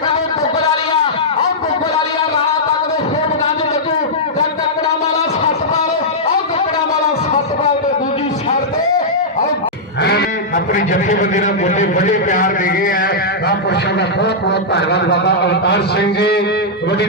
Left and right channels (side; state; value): both; normal; correlation -0.09